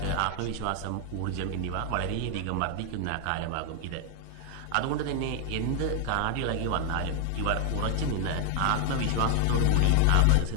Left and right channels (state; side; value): different; both; correlation 0.00